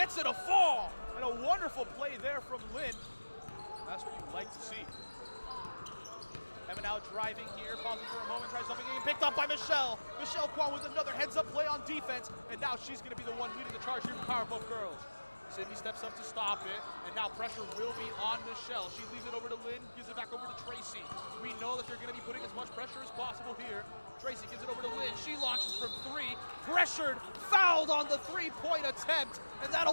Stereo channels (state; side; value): inverted; both; correlation -1.00